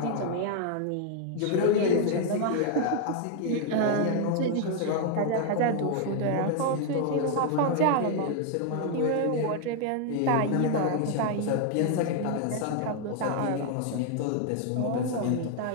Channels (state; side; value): different; both; correlation 0.00